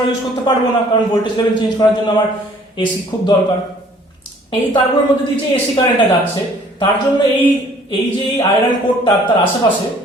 ইউজ করতে পারবো না, কারণ ভোল্টেজ লেভেল চেঞ্জ করার জন্য আমার এসি খুব দরকার। এই তারগুলোর মধ্যে দিয়ে যে এসি কারেন্টটা যাচ্ছে তার জন্য এই যে আয়রন কোরটা তার আশেপাশে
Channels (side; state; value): both; normal; correlation 0.56